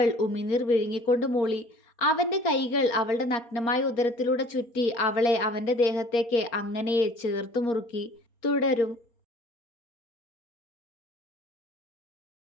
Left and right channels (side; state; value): right; late; 4.3 ms